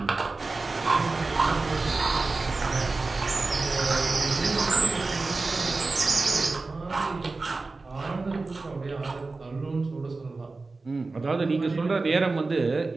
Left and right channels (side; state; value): left; quieter; 3.6 dB